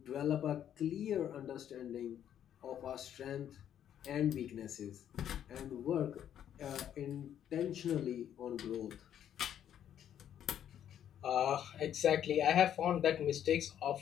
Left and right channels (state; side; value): quieter; right; 10.0 dB